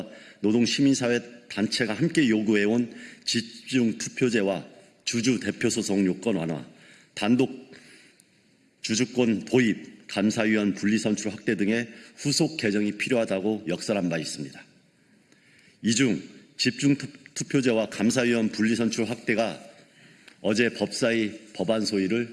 노동시민사회 단체가 함께 요구해온 집중투표제와 주주대표소송 요건 완화, 단독 주주권 도입, 감사위원 분리선출 확대 등의 후속 개정이 필요하다고 역설한 바 있습니다. 이 중 집중투표제와 감사위원 분리선출 확대가 어제 법사위 법안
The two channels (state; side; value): identical; both; correlation 1.00